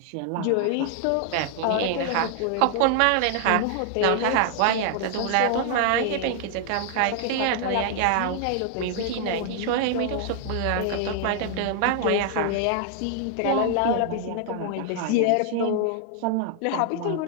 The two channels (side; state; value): both; different; correlation 0.00